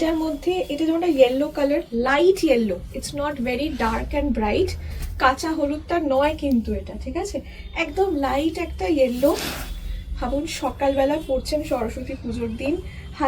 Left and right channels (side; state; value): both; identical; correlation 1.00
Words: মধ্যে এটা যেমন yellow colour, light yellow, it's not very dark and bright. কাঁচা হলুদটা নয় কিন্তু এটা, ঠিক আছে, একদম লাইট একটা ইয়েলো। ভাবুন সকালবেলা পড়ছেন সরস্বতী পুজোর দিন,